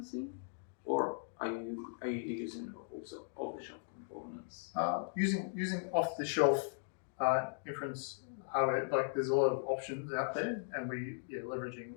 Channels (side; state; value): right; silent; digital silence